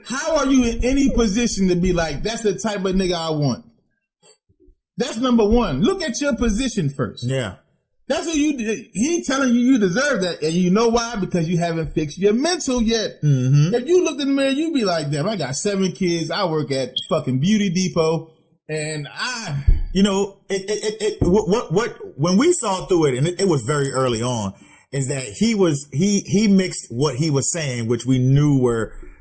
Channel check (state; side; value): identical; both; correlation 1.00